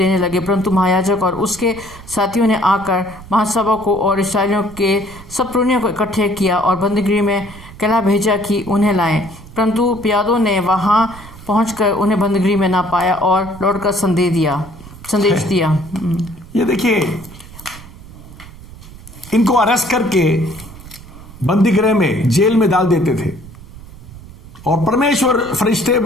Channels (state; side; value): noise; right; rumble, 18 dB below the sound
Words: लगे। परंतु महायाजक और उसके साथियों ने आकर महासभा को और इस्राएलियों के सब पुरनियों को इकट्ठे किया और बंदीगृह में कहला भेजा कि उन्हें लाएं। परंतु प्यादों ने वहां पहुंचकर उन्हें बंदीगृह में ना पाया और लौटकर संदेश दिया। ये देखिए, इनको अरेस्ट करके बंदीगृह में, जेल में डाल देते थे और परमेश्वर फरिश्ते